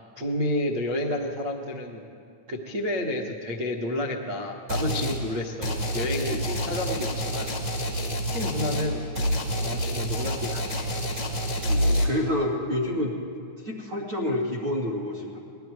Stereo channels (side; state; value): left; late; 9.3 ms